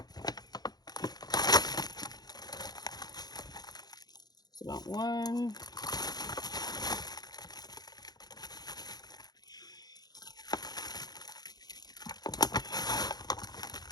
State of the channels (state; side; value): late; right; 0.19 ms